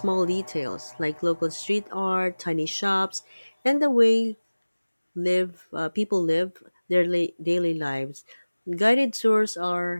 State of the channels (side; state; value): both; inverted; correlation -1.00